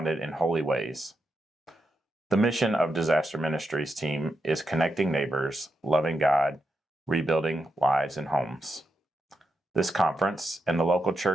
in holy ways. The mission of Disaster Ministries team is connecting neighbors, loving God, rebuilding lives and homes. This conference and the local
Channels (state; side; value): normal; both; correlation 0.85